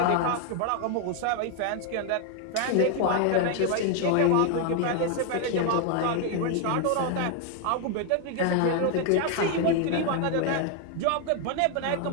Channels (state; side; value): different; both; correlation 0.00